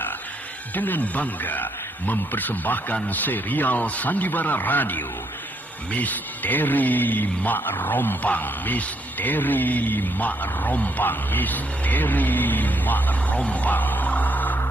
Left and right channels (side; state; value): both; normal; correlation 0.74